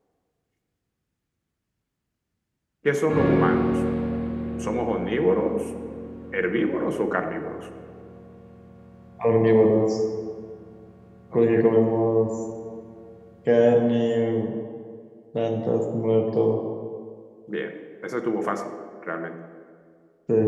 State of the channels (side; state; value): both; identical; correlation 1.00